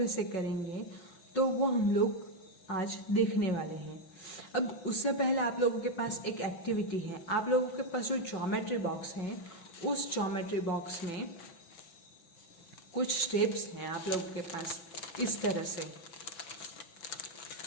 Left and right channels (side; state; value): right; late; 5.4 ms